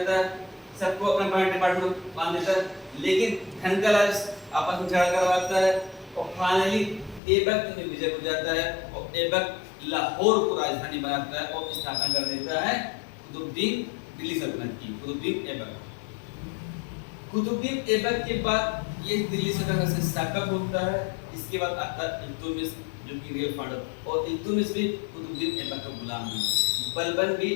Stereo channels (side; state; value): right; drops out; at 7.2 s